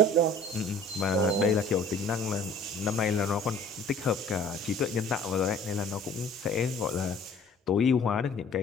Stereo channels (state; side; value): normal; both; correlation 0.51